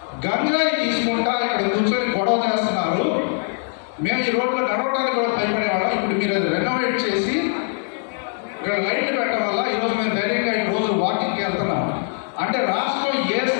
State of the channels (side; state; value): right; silent; 56 dB below the other